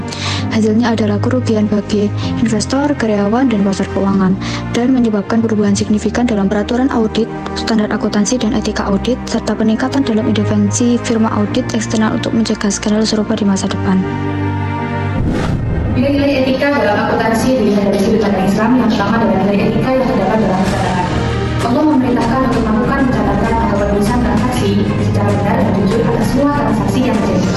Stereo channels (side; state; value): both; identical; correlation 1.00